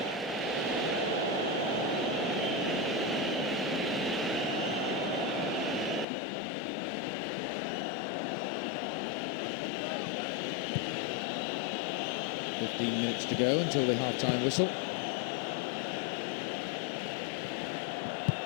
Minutes to go until the half-time whistle.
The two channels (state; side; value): drops out; right; at 6.1 s